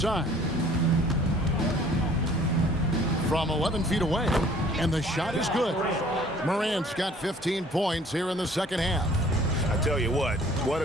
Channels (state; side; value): normal; both; correlation 0.55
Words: From 11 feet away, and the shot is good. Morant's got 15 points here in the second half. I tell you what